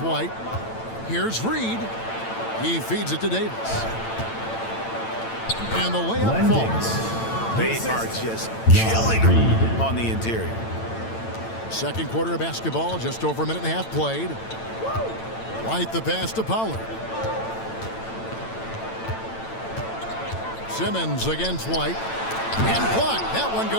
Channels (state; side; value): late; right; 8.9 ms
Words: White. Here's Reid. He feeds it to Davis. And the layup falls. They are just killing them on the interior. Second quarter of basketball, just over a minute and a half played. White the pass to Pollard. Simmons against White. And blocked. That one